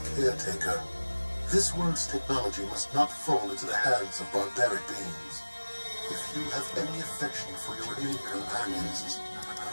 caretaker. This world's technology must not fall into the hands of barbaric beings. If you have any affection for your alien companions,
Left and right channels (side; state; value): both; inverted; correlation -1.00